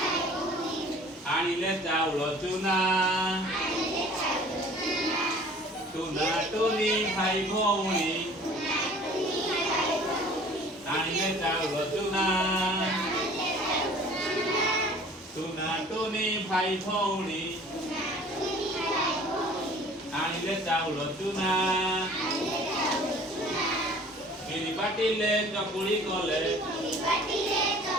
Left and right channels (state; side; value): normal; both; correlation 0.49